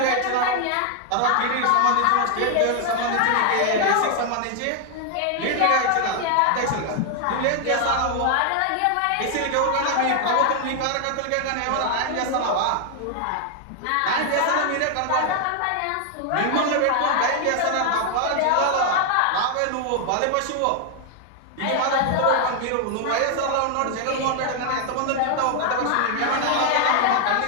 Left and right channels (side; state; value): both; different; correlation 0.00